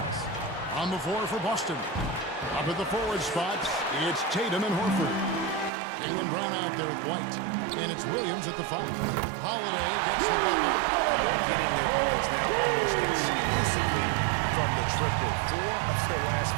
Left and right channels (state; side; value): drops out; left; at 5.7 s